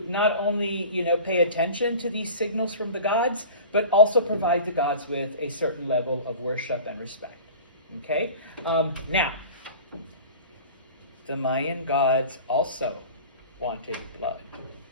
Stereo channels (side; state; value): both; inverted; correlation -0.39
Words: not only, pay attention to these signals from the gods, but also provide the gods with a certain level of worship and respect. Okay, now, the Mayan gods also wanted blood